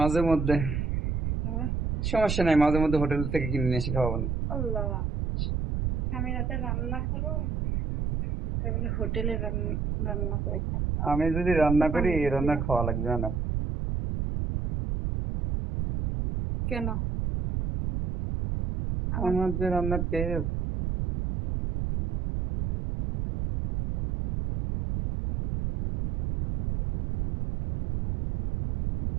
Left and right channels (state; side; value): noise; right; rumble, 1 dB below the sound